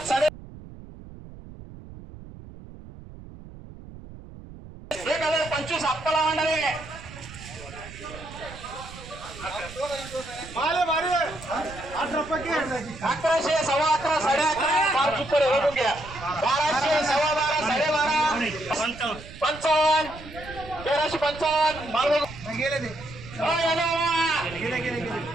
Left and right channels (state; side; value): noise; right; rumble, 16 dB below the sound